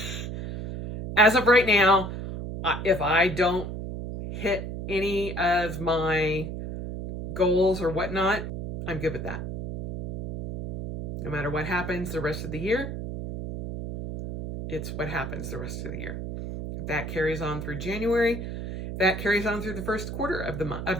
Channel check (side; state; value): right; noise; hum, 5 dB below the sound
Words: As of right now, if I don't hit any of my goals or whatnot, I'm good with that. No matter what happens the rest of the year, it's what happens the rest of the year. If that carries on through January, if that carries on through the first quarter of